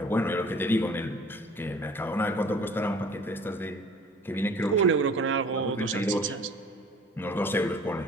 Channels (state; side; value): normal; both; correlation 0.49